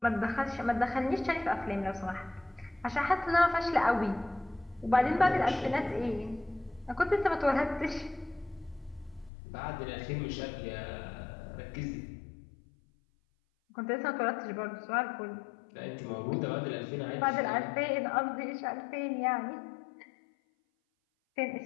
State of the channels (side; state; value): right; drops out; at 9.3 s